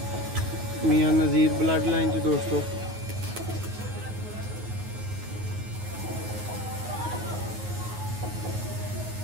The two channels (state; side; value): late; left; 9.5 ms